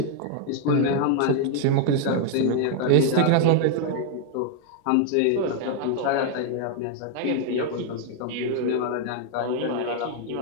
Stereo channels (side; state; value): both; different; correlation 0.00